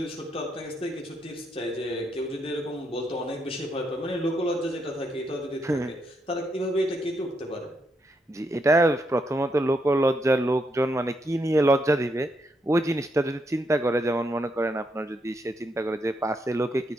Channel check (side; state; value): both; normal; correlation 0.79